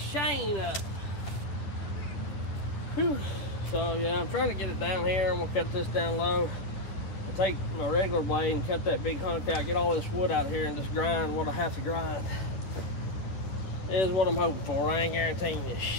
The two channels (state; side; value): late; right; 10 ms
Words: chain up. Whew. So yeah, I'm trying to get it down here. I'm gonna cut this down low. I'll take my regular blade and cut that big hunk out, get all this wood out of here and just grind what I have to grind. Is what I'm hoping for. I ain't guaranteeing you